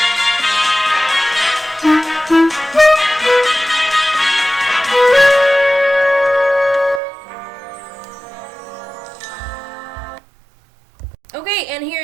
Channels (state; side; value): drops out; left; at 7.0 s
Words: Okay, and here